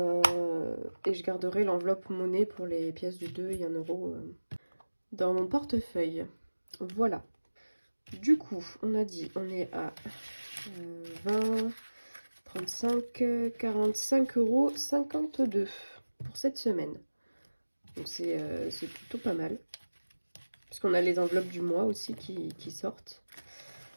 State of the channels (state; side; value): inverted; both; correlation -1.00